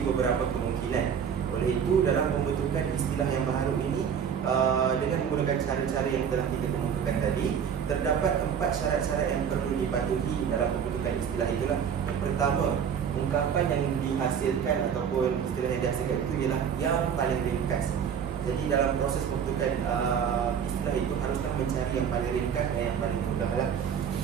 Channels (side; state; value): left; quieter; 7.7 dB